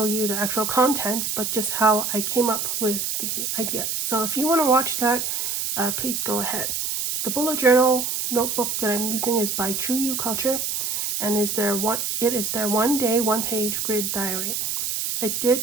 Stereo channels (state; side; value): noise; right; hiss, 1 dB below the sound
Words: you the actual contents, but just how I came up with the ideas. So if you want to watch that, please go ahead. The bullet journal notebook that I'm using is by True You Culture, and it is their 1 day, 1 page grid diary. I